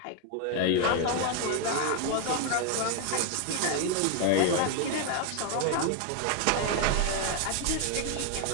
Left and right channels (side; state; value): both; different; correlation 0.01